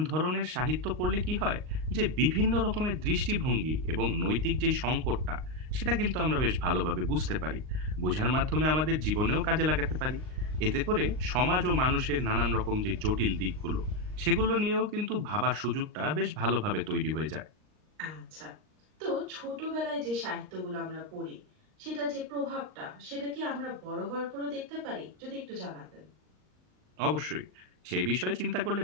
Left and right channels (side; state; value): left; late; 39 ms